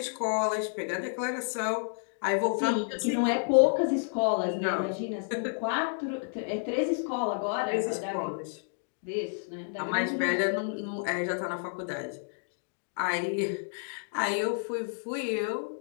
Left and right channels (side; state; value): right; silent; digital silence